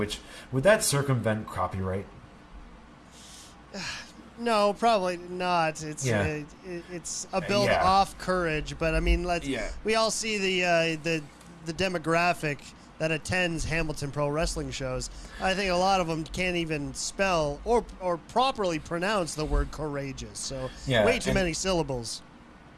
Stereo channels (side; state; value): both; identical; correlation 1.00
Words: would that circumvent copyright? No, probably not. It's it's a build off Courage, but I mean, we all see the demographic that attends Hamilton Pro Wrestling shows. I think a lot of them can't even spell or properly pronounce the word courageous. So way too many syllables.